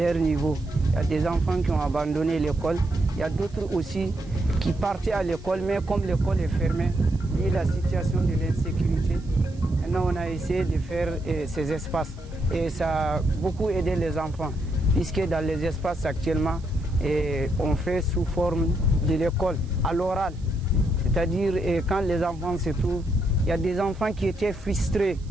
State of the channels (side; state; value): right; noise; hiss, 28 dB below the sound